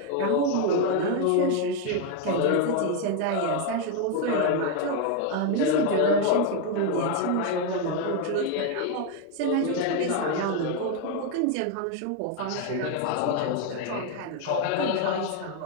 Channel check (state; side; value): different; both; correlation 0.01